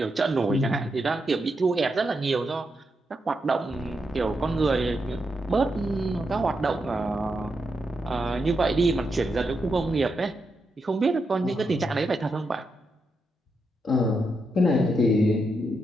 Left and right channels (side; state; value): both; normal; correlation 0.84